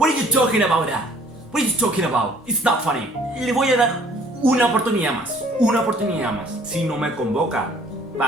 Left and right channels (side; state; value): both; normal; correlation 0.57